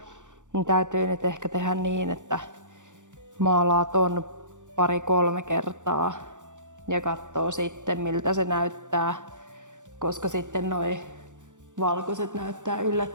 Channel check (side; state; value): left; late; 0.86 ms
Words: Niin täytyy nyt ehkä tehdä niin, että maalaa ton 2-3 kertaa ja katsoo sitten miltä se näyttää, koska sitten noi valkoiset näyttää